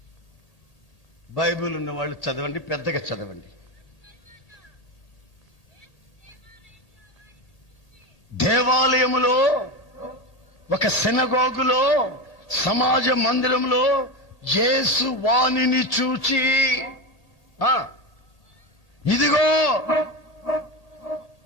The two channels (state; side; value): late; right; 1.8 ms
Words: బైబిల్ ఉన్న వాళ్ళు చదవండి, పెద్దగా చదవండి. దేవాలయములో, ఒక సినగోగులో, సమాజ మందిరంలో యేసు వాణిని చూచి,